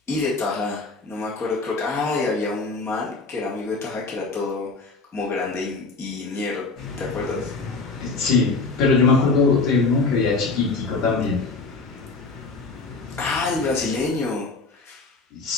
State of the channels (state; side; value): quieter; right; 3.8 dB